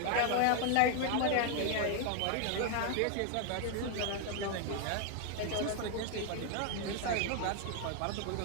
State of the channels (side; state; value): both; different; correlation 0.00